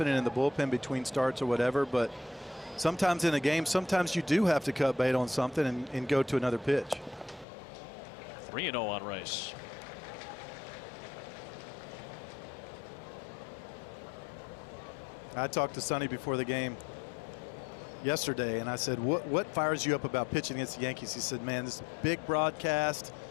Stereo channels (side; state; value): right; drops out; at 7.5 s